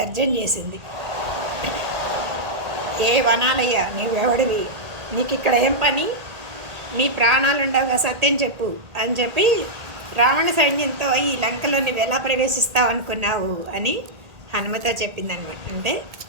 చేసింది. ఏ వనాలయ్యా, నీవెవడివి? నీకు ఇక్కడ ఏం పని? నీ ప్రాణాలు ఉండవుగా, సత్యం చెప్పు అని చెప్పి రావణ సైన్యంతో ఈ లంకలో నువ్వు ఎలా ప్రవేశిస్తావు అనుకున్నావు అని హనుమతో చెప్పిందనమాట. అంటే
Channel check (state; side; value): late; left; 1.8 ms